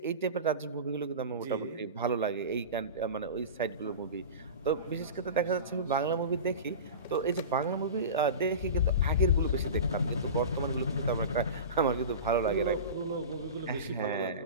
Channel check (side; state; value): both; inverted; correlation -0.30